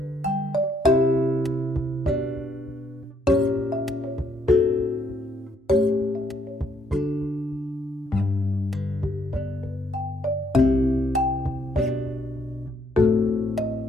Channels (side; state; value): both; normal; correlation 0.71